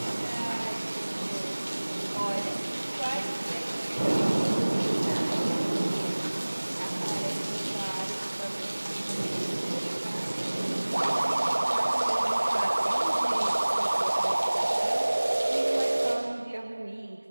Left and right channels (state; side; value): inverted; both; correlation -1.00